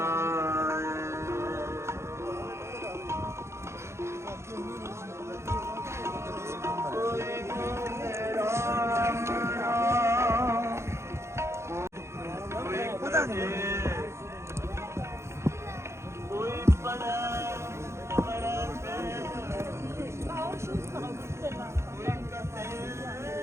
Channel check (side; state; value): left; late; 0.13 ms